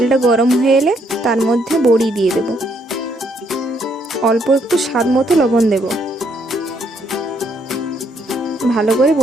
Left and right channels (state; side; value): normal; both; correlation 0.71